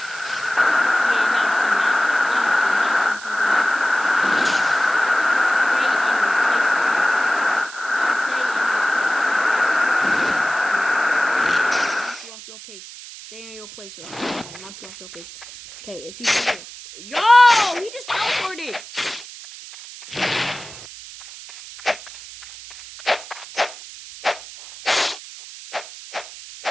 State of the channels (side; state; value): right; noise; hiss, 15 dB below the sound